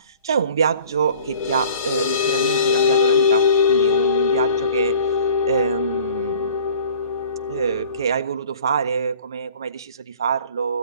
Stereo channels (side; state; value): both; inverted; correlation -0.49